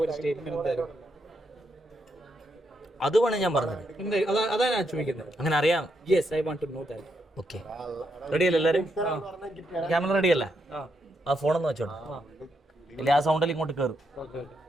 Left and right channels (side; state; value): both; normal; correlation 0.80